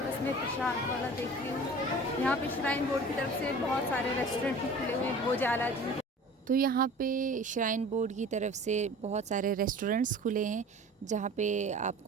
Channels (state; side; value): normal; both; correlation 0.42